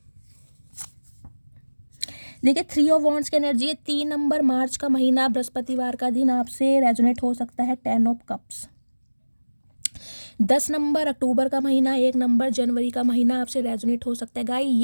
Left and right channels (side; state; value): both; inverted; correlation -1.00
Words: देखिए 3 ऑफ वॉन्ड्स की एनर्जी है। 3 नंबर मार्च का महीना, बृहस्पतिवार का दिन आपसे रेजोनेट हो सकता है। 10 ऑफ कप्स। 10 नंबर अक्टूबर का महीना, 1 नंबर जनवरी का महीना आपसे रेजोनेट हो सकता है। गाइस